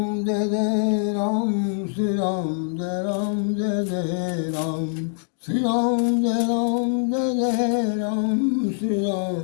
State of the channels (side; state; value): right; silent; digital silence